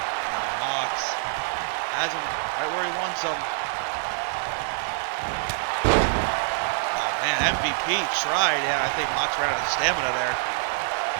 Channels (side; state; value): left; silent; digital silence